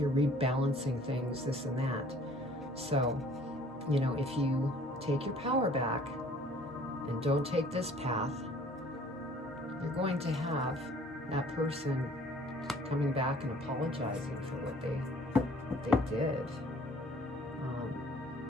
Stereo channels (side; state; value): both; normal; correlation 0.54